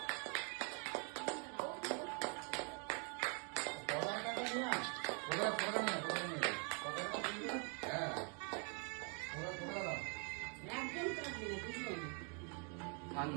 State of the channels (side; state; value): left; quieter; 36.8 dB